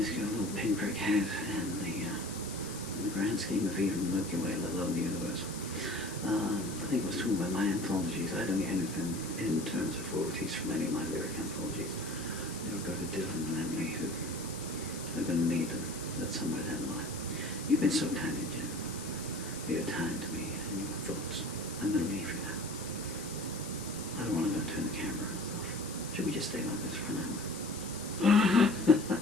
pinprick head in the grand scheme of even the Milky Way, let alone the universe. I think I was talking about my anthologies. I don't get anything in terms of royalties from any of my lyric anthologies. They'll go to Dylan and Emily, who are going to need them. That's somewhere down the line. You've been so kind, Jen. Your time to me and your thoughts. I'm going to leave you now. I don't want to go and turn the camera off. Should we just stay like this for an hour?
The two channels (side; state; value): left; noise; hiss, 11 dB below the sound